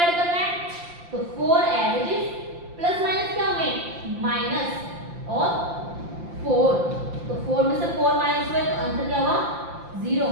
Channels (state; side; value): late; left; 5.8 ms